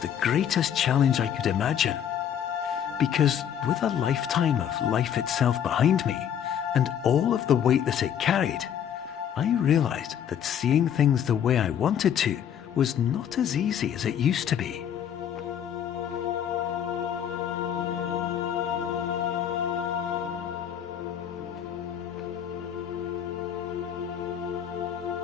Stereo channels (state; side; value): quieter; right; 9.2 dB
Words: the greatest challenge I could imagine. Because with a lifetime of life itself behind me, and all of the weight that it carried, I realized that seeing things the way I wanted to was not as easy as it used to be.